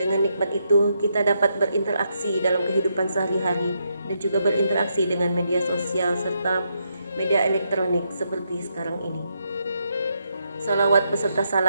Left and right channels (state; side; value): inverted; both; correlation -0.80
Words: nikmat itu kita dapat berinteraksi dalam kehidupan sehari-hari dan juga berinteraksi dengan media sosial serta media elektronik seperti sekarang ini. Salawat beserta